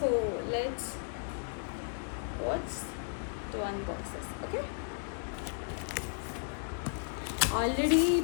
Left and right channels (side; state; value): right; silent; digital silence